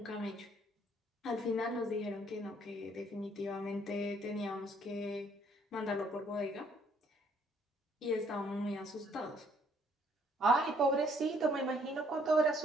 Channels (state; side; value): normal; both; correlation 0.65